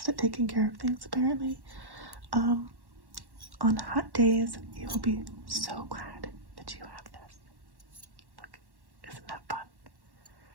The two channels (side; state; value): left; late; 1.1 ms